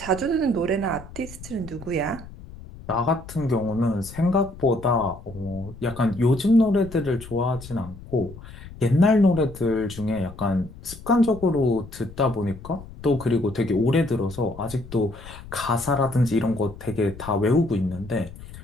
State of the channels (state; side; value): noise; left; rumble, 16 dB below the sound